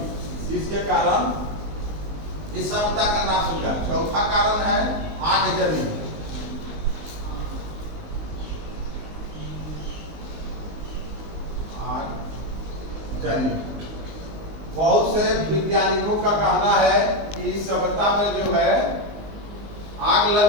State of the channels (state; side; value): late; left; 19 ms